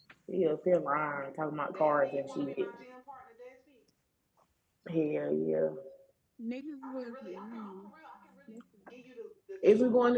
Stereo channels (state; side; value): identical; both; correlation 1.00